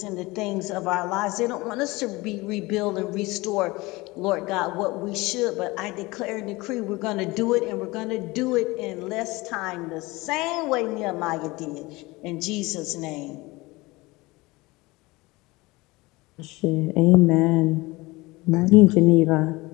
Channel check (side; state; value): right; quieter; 22.1 dB